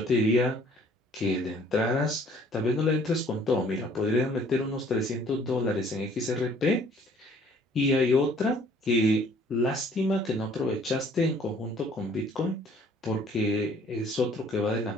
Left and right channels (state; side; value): normal; both; correlation 0.57